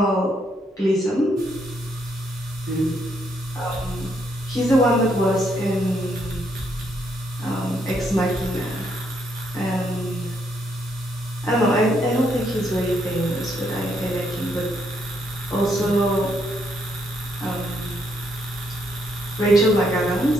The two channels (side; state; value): both; normal; correlation 0.74